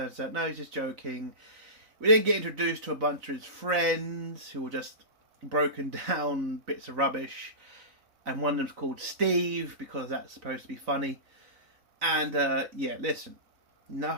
out, no, he's just joking. We then get introduced to a bunch of his friends who are just broken down bits of rubbish. And one of them's called Steve, because that's supposed to be funny. And, yeah, listen.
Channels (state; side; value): late; left; 4.0 ms